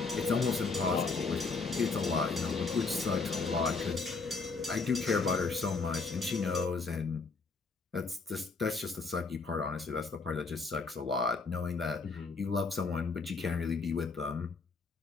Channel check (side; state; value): right; quieter; 4.3 dB